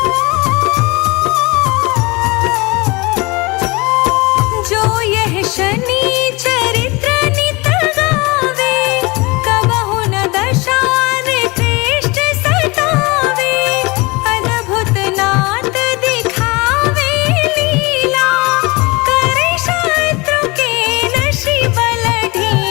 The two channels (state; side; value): quieter; right; 24.9 dB